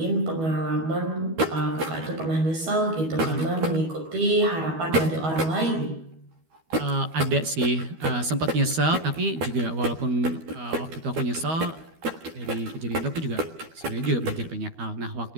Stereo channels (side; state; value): left; late; 12 ms